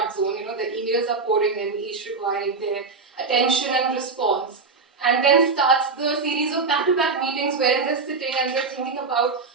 zone. The emails are pouring in, each requiring their attention and response. And then starts the series of back-to-back meetings wherein they're sitting and they're thinking about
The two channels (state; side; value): quieter; left; 4.4 dB